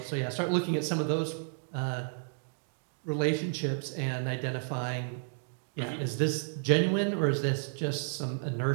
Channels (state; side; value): silent; left; digital silence